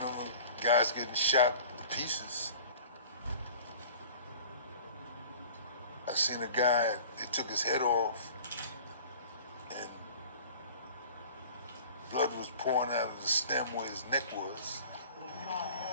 I seen a guy, they took his head off, and blood was pouring out of the stem where his neck was.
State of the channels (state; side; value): inverted; both; correlation -0.43